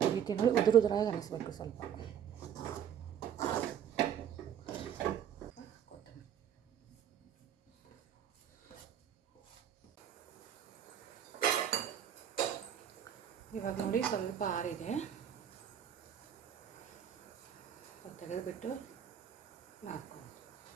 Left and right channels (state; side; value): quieter; left; 9.1 dB